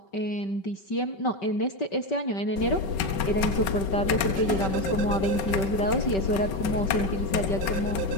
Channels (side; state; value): right; late; 5.3 ms